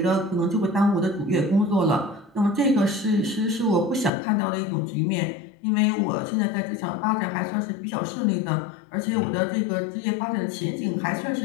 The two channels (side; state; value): right; drops out; at 4.1 s